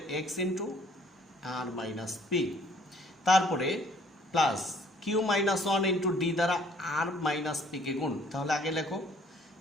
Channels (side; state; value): both; normal; correlation 0.59